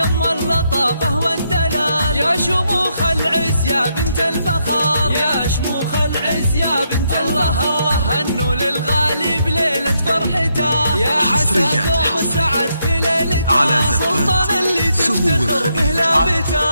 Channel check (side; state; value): both; inverted; correlation -0.78